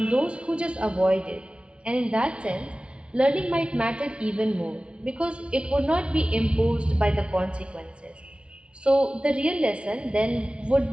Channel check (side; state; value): left; late; 0.059 ms